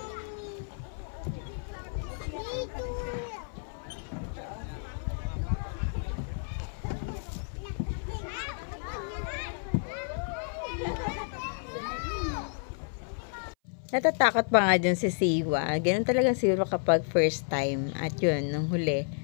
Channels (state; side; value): silent; right; 56 dB below the other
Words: Natatakot pa nga dyan si Siwa. Ganun talaga siguro kapag first time. At yun, nung huli,